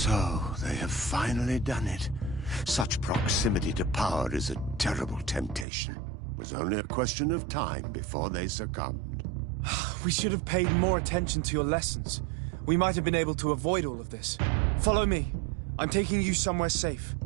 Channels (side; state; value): left; drops out; at 5.7 s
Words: they have finally done it. Such proximity to power is a terrible temptation. It was only a question of time before they succumbed. We should have paid more attention to your lessons. We might have been able to avoid all of this. Follow me. I'm taking you somewhere safe.